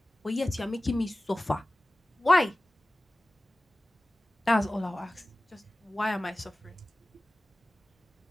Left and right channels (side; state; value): both; normal; correlation 0.96